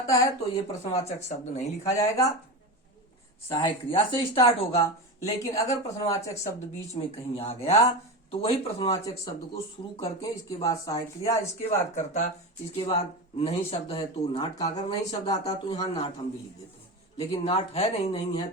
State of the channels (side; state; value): both; normal; correlation 0.23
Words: है तो ये प्रश्नवाचक शब्द नहीं लिखा जाएगा, सहायक क्रिया से स्टार्ट होगा। लेकिन अगर प्रश्नवाचक शब्द बीच में कहीं आ गया तो वही प्रश्नवाचक शब्द को शुरू करके इसके बाद सहायक क्रिया, इसके बाद कर्ता, इसके बाद नहीं शब्द है तो नाट का, अगर नहीं शब्द आता तो यहाँ नाट हम भी लिख देते हैं, लेकिन नाट है नहीं है